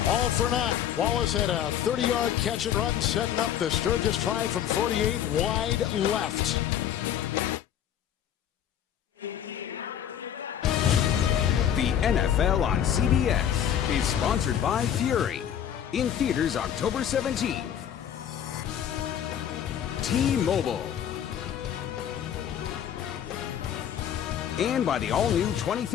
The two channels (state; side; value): quieter; right; 9.8 dB